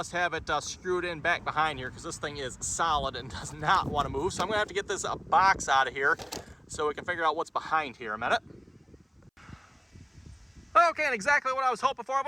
have it screwed in back behind here because this thing is solid and does not want to move. So I'm going to have to get this box out of here so we can figure out what's behind here a minute. Okay, and exactly what I was hoping for,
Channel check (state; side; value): identical; both; correlation 1.00